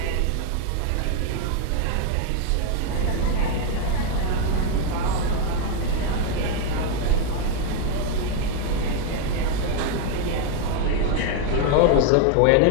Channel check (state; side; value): different; both; correlation 0.01